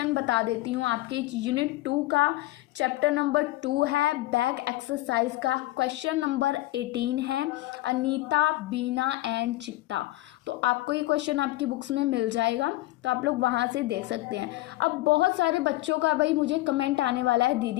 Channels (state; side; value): quieter; right; 17.7 dB